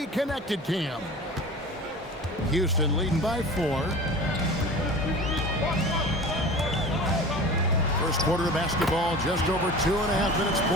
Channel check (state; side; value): normal; both; correlation 0.37